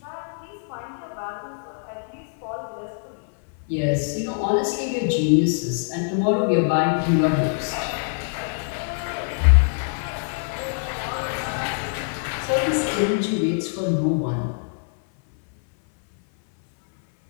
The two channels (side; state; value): right; silent; 60 dB below the other